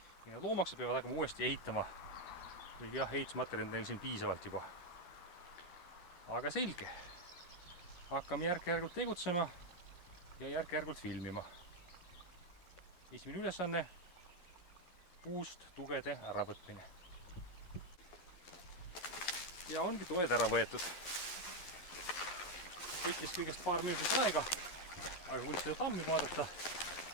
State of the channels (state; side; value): late; right; 11 ms